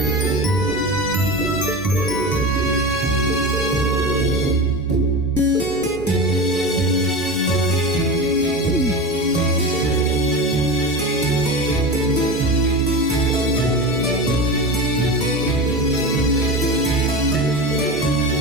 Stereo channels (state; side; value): normal; both; correlation 0.26